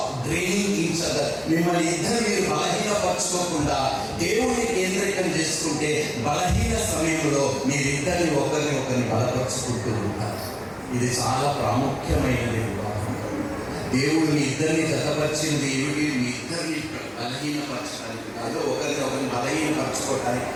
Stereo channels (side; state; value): both; identical; correlation 1.00